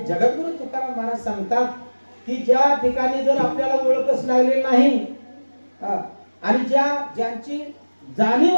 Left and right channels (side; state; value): both; inverted; correlation -1.00